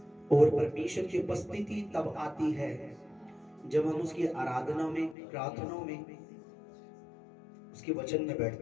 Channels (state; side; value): drops out; right; at 5.2 s